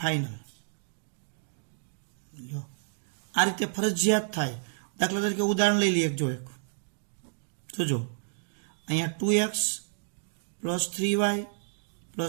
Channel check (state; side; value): silent; left; digital silence